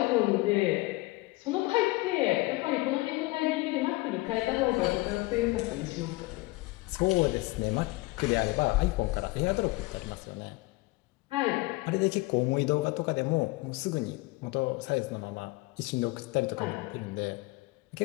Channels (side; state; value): right; quieter; 21.8 dB